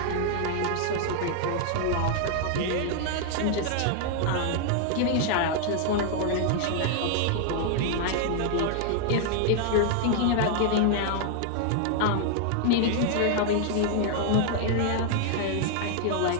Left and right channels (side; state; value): both; different; correlation 0.00